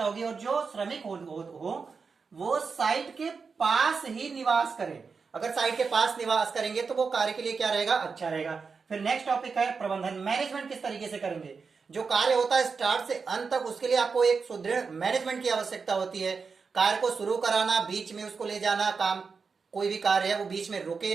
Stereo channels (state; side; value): quieter; left; 5.1 dB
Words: होगी। और जो श्रमिक हो वो साइट के पास ही निवास करें। अगर साइट के पास निवास करेंगे तो वो कार्य के लिए क्या रहेगा, अच्छा रहेगा। फिर नेक्स्ट टॉपिक है प्रबंधन। मैनेजमेंट किस तरीके से करेंगे, जो कार्य होता है स्टार्ट से अंत तक, उसके लिए आपको एक सुदृढ़ मैनेजमेंट की आवश्यकता होती है। कार्य को शुरू कराना, बीच में उसको ले जाना, काम कोई भी कार्य है वो बीच में रुके